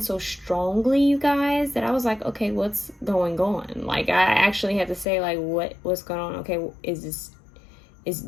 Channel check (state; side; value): drops out; right; at 5.1 s